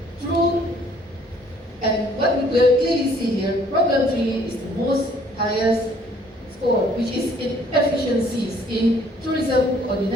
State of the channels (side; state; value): both; normal; correlation 0.60